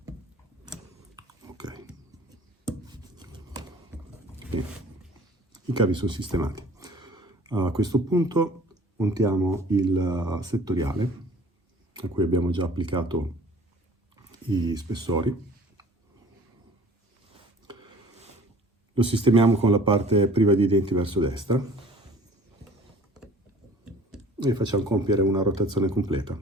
Ok. Bene. I cavi sono sistemati. A questo punto montiamo il settoriale a cui abbiamo già applicato i spessori. Lo sistemiamo con la parte priva di denti verso destra e facciamo compiere una rotazione completa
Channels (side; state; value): both; normal; correlation 0.50